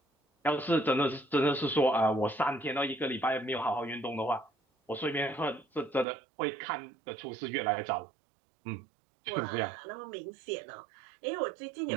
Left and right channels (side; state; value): left; drops out; at 6.1 s